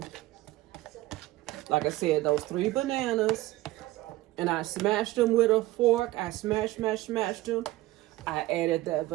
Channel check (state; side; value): quieter; left; 17.5 dB